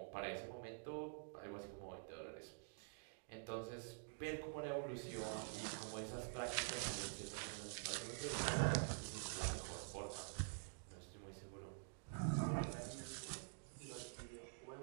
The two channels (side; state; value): left; silent; digital silence